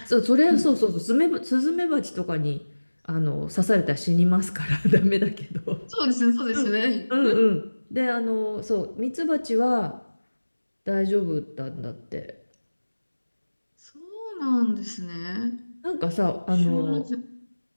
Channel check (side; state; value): both; inverted; correlation -1.00